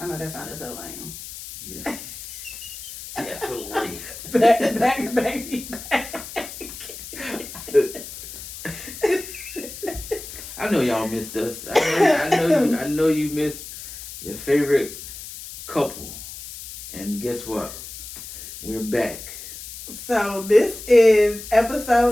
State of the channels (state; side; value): noise; left; hiss, 12 dB below the sound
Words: know that sounded so lame. Yeah. Definitely. backity back. I know y'all missed us. I know you missed your favorite couple. And guess what? We're back. So this is